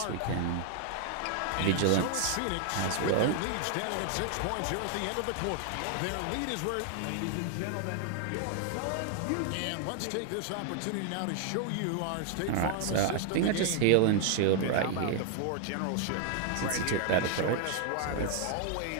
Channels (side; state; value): both; different; correlation 0.00